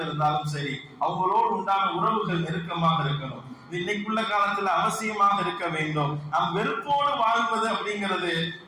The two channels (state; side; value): identical; both; correlation 1.00